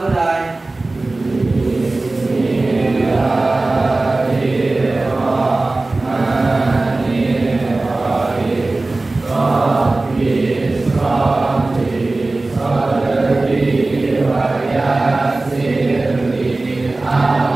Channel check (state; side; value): quieter; left; 3.2 dB